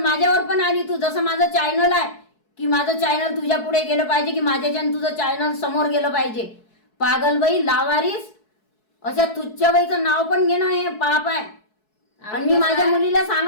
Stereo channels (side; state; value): right; late; 4.7 ms